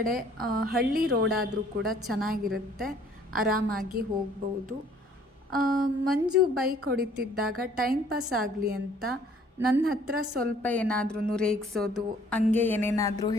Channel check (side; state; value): both; normal; correlation 0.58